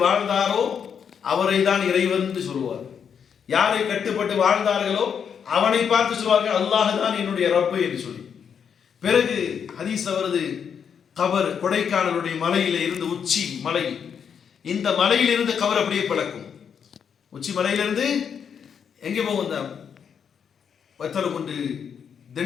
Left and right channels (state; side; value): quieter; right; 7.4 dB